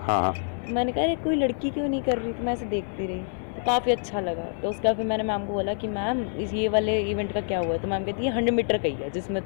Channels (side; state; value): right; silent; 60 dB below the other